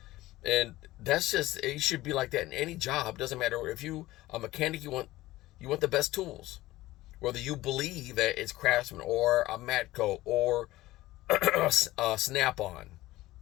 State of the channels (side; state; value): right; quieter; 17.2 dB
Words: And that's just, it should be like that in any job. Doesn't matter if you a mechanic, you want the best tools. Whether you believe that it's Craftsman or a Matco or Snap-on,